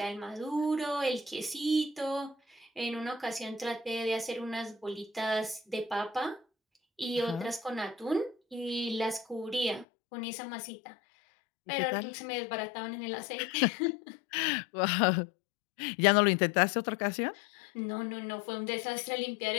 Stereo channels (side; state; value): right; drops out; at 9.9 s